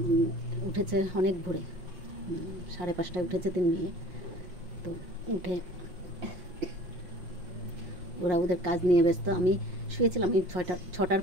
উঠেছে অনেক ভোরে, 5:30টায় উঠেছে 3 মেয়ে। তো উঠে ওরা ওদের কাজ নিয়ে ব্যস্ত। আমি শুয়েছিলাম, আমি 6টার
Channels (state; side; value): late; left; 5.6 ms